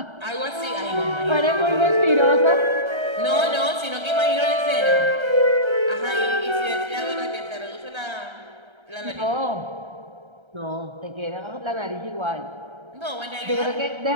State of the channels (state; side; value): late; left; 1.3 ms